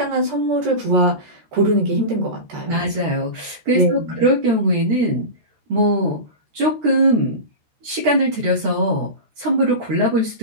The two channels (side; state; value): left; late; 13 ms